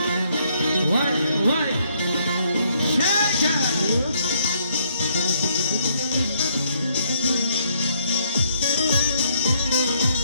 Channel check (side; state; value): both; inverted; correlation -0.70